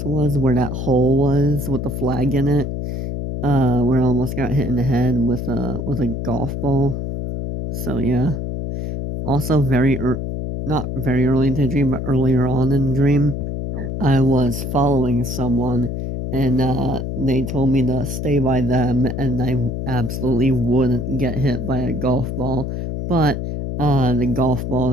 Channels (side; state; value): left; noise; hum, 4 dB below the sound